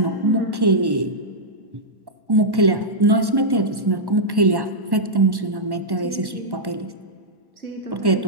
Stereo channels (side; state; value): left; late; 1.1 ms